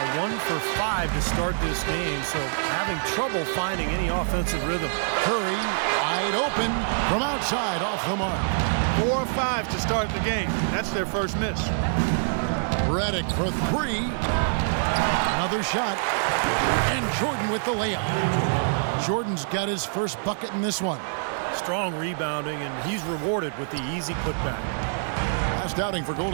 1 for 5 to start this game, so having trouble finding any offensive rhythm. Curry wide open from outside off the mark. 4 of 5 to start the game. That's their first miss. Redick for 3. Another shot. And Jordan with the layup. Jordan's got his first bucket in this one. Strong rebounding, and he's rewarded with the easy putback. Last outing for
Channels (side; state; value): left; silent; 56 dB below the other